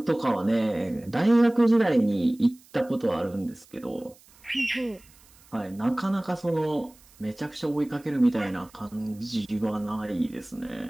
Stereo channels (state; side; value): noise; right; hiss, 27 dB below the sound